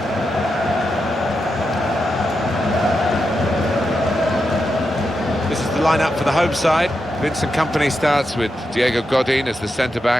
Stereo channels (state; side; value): normal; both; correlation 0.87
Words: This is the lineup for the home side. Vincent Kompany starts with Diego Godin as the